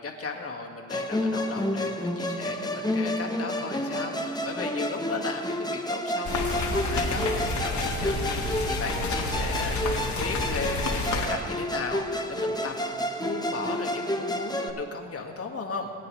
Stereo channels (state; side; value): normal; both; correlation 0.41